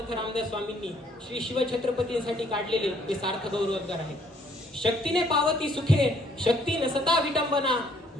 रामदास स्वामींनी श्री शिवछत्रपतींसाठी काढलेले हे सार्थ गौरवोद्गार आहे. शक्तीने पावती सुखे, शक्ती नसता विटंबना,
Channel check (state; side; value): normal; both; correlation 0.64